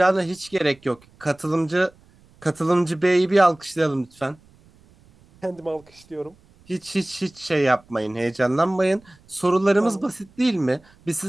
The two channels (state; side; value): noise; right; rumble, 29 dB below the sound